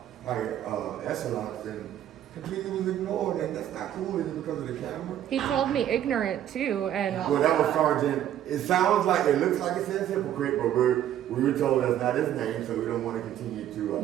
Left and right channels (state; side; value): quieter; left; 11.2 dB